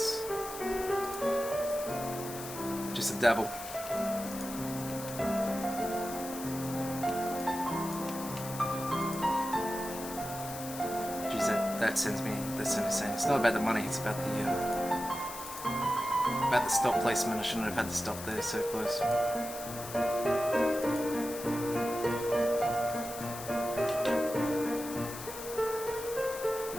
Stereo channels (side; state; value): left; noise; hiss, 11 dB below the sound